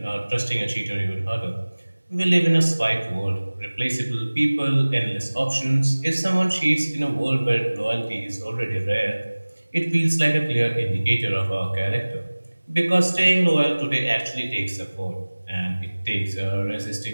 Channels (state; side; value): inverted; both; correlation -1.00